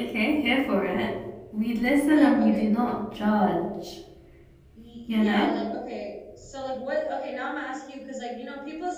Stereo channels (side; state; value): both; identical; correlation 1.00